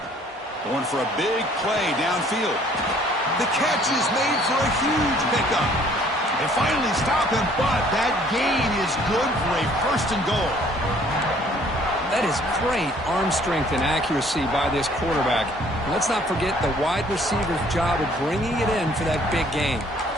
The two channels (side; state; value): both; normal; correlation 0.59